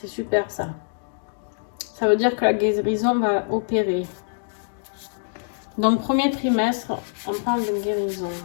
super ça. Ça veut dire que la guérison va opérer. Donc, premier trimestre, on parle de guérison.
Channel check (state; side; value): silent; right; digital silence